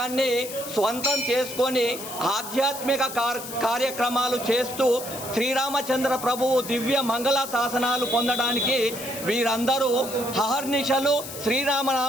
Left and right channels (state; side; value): noise; left; hiss, 10 dB below the sound